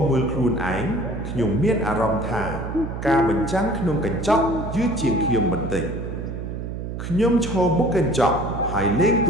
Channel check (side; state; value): right; noise; hum, 6 dB below the sound